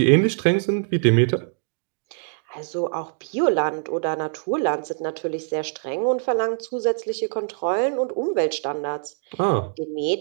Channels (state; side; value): silent; left; digital silence